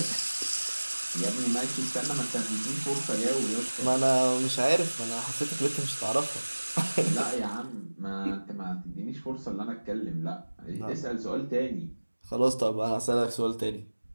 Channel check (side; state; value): both; inverted; correlation -1.00